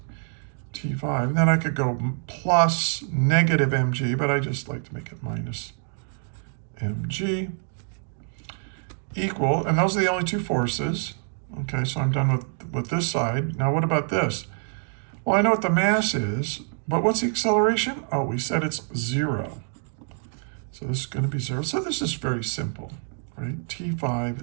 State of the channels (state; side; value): silent; left; 56 dB below the other